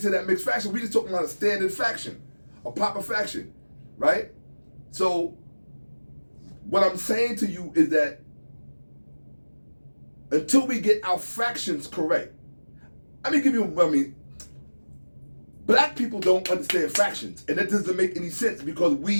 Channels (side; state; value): both; inverted; correlation -1.00